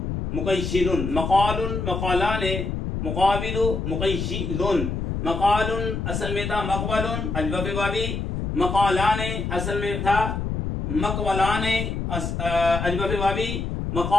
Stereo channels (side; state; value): left; noise; rumble, 3 dB below the sound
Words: मुक़य्यिलुन, मक़ालुन मक़ालाने मुक़ाबिलु मुक़य्यिलुन। मक़ालुन असल में था मक़वलुन अजवफ़े वावी, मक़ालाने असल में था मक़वलाने अजवफ़े वावी,